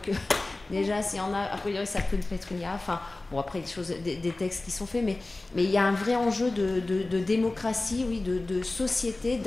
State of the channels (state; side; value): quieter; right; 3.0 dB